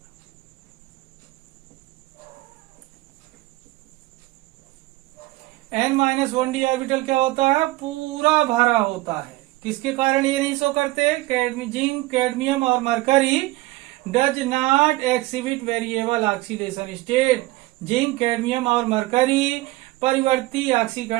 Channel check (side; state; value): left; quieter; 19.4 dB